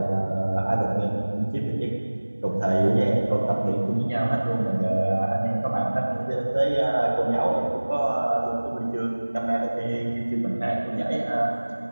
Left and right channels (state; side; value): inverted; both; correlation -1.00